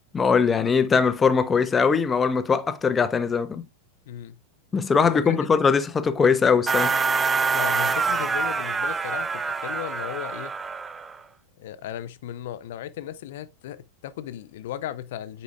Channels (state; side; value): quieter; right; 3.1 dB